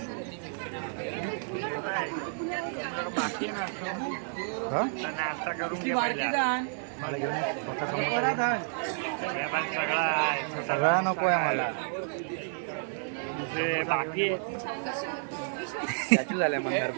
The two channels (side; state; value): left; silent; 57 dB below the other